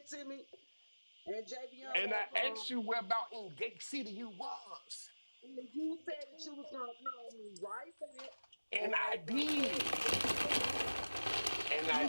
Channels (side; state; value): both; inverted; correlation -1.00